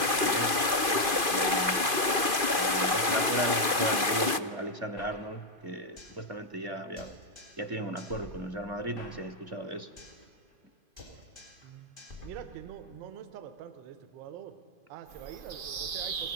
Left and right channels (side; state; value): left; late; 2.5 ms